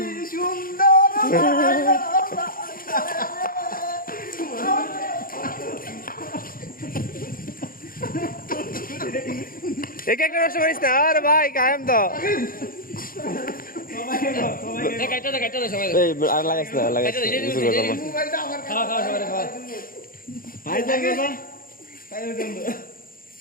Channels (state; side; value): late; right; 0.41 ms